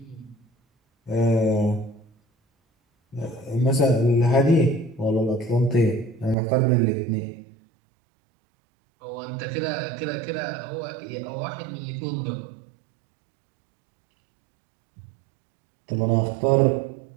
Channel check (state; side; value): drops out; left; at 6.4 s